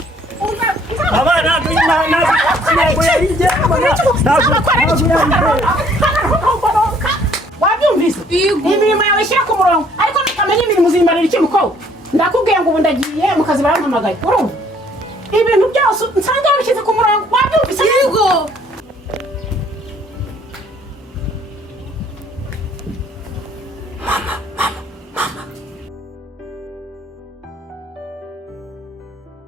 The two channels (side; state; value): both; normal; correlation 0.61